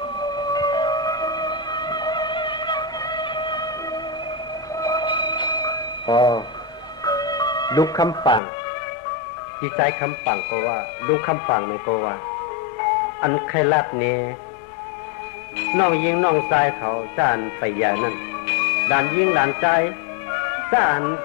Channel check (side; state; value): right; drops out; at 8.4 s